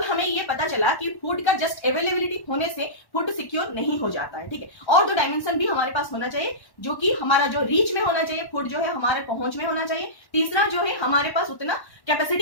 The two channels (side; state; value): right; late; 1.1 ms